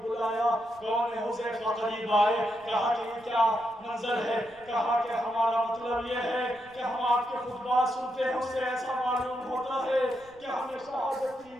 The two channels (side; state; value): right; noise; rumble, 28 dB below the sound